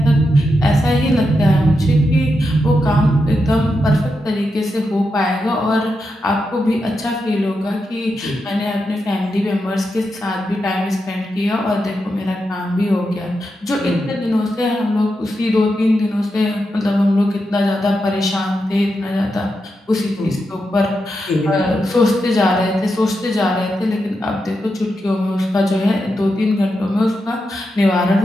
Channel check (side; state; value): both; normal; correlation 0.86